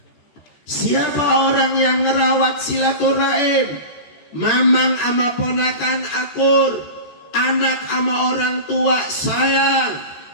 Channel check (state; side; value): late; right; 14 ms